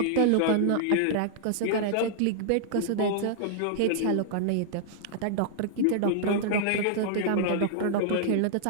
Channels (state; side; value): different; both; correlation -0.01